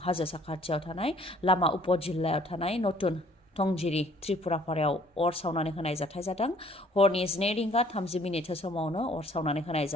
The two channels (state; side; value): normal; both; correlation 0.58